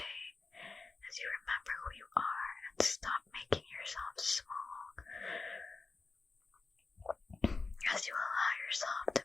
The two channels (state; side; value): quieter; right; 4.0 dB